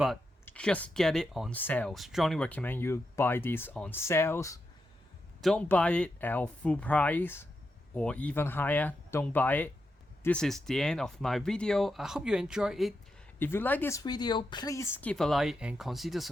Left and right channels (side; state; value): both; normal; correlation 0.86